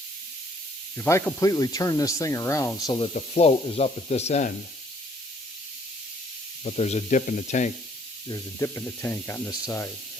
If I completely turn this thing around so that the float is up at this end, but there's a dip in the tank. There's a dip in the tank on this side.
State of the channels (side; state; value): both; normal; correlation 0.62